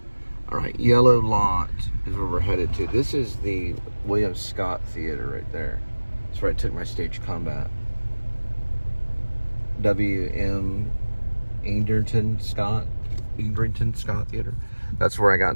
All right, Yellow Lot is where we're headed to. This is the William Scott Theater right there. That's where I took my stage combat. W.M. Egerton Scott Theater. That's where I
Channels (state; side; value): inverted; both; correlation -1.00